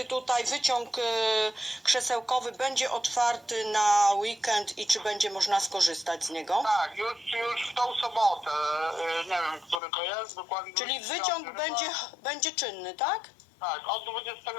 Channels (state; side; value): drops out; right; at 9.8 s